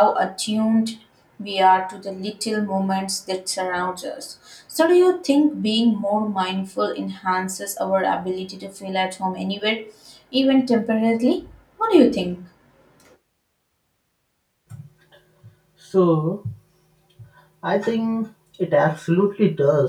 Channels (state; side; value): identical; both; correlation 1.00